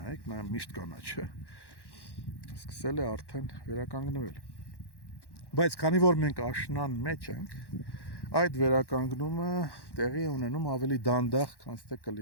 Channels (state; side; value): late; right; 1.1 ms